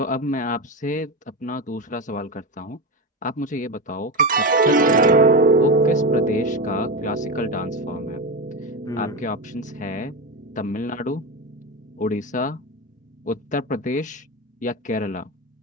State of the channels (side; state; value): both; normal; correlation 0.16